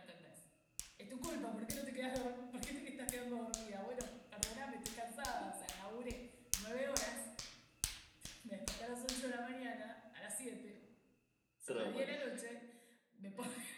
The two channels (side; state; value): both; identical; correlation 1.00